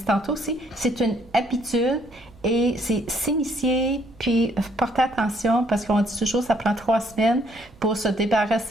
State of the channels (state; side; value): noise; right; rumble, 25 dB below the sound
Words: tantôt aussi, c'est une habitude et c'est s'initier, puis porter attention, parce qu'on dit toujours, ça prend 3 semaines pour se